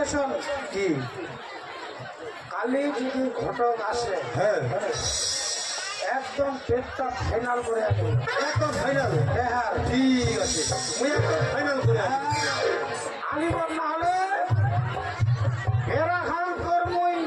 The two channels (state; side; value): identical; both; correlation 1.00